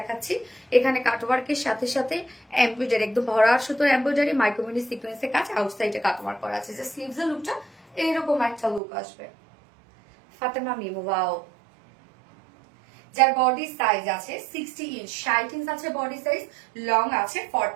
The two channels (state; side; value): drops out; left; at 8.8 s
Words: এখানে কাট ওয়ার্কের সাথে সাথে এমব্রয়ডারি, একদম ভরা সুতোর এমব্রয়ডারি, মাইক্রোমিনি সিকোয়েন্সের কাজ, আউটসাইডে কাট ওয়ার্ক করা আছে, যে স্লিভস এর লুকটা এইরকম একটা লুক আসবে। ফাতেমা মিমু, ওয়াও। যার বডি সাইজ আছে 60 ইঞ্চ, 60 ইঞ্চ আছে বডি সাইজ, লং আছে